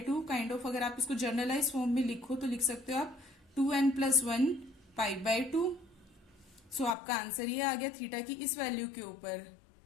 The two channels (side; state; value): right; drops out; at 7.0 s